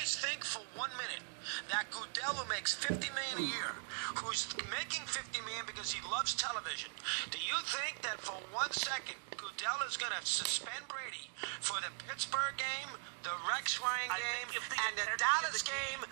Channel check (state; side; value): silent; left; 51 dB below the other